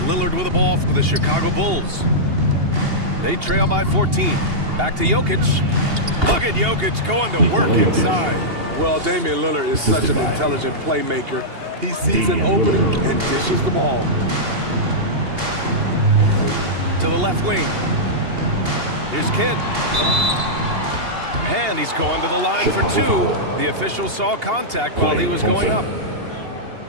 with the ball for the Chicago Bulls. They trail by 14. Back to Jokic. Look at Jokic going to work inside. Well, Damian Lillard is such an intelligent playmaker. He sees an opening and dishes the ball. To the left wing. Here's Kidd. And he's going to the line for 2. The official saw contact while he was going up.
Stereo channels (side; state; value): left; late; 2.8 ms